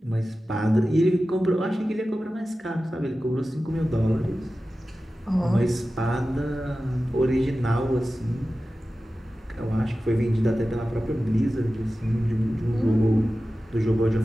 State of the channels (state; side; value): normal; both; correlation 0.94